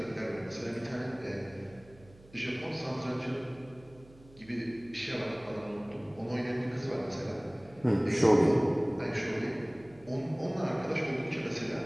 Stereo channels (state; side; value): noise; right; hum, 24 dB below the sound